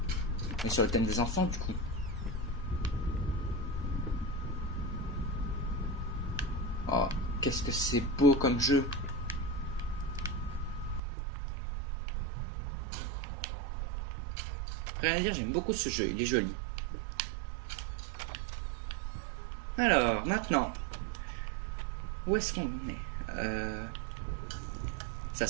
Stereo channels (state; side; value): drops out; left; at 11.0 s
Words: Mais sur le thème des enfants, du coup. Oh, qu'est-ce que c'est beau comme jeu. Rien à dire, j'aime beaucoup ce jeu, il est joli. Alors, maintenant. Où est-ce qu'on est? Ça